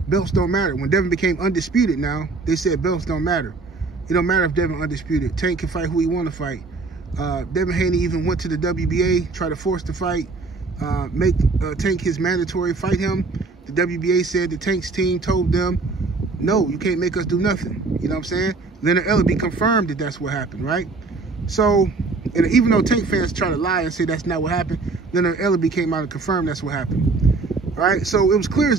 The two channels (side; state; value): left; quieter; 3.9 dB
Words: belts don't matter. When Devin became undisputed now, they said belts don't matter. It don't matter if Devin undisputed. Tank can fight who he want to fight. Devin Haney even went to the WBA, tried to force the fight, make Tank his mandatory, fight him. The WBA said the Tank's team told them, no, you can't make us do nothing. You know what I'm saying? Leonard Ellaby confirmed that that's what happened, right? So, and even though Tank fans try to lie and say that's not what happened, Leonard Ellaby came out and confirmed that's what happened, right? So it was clear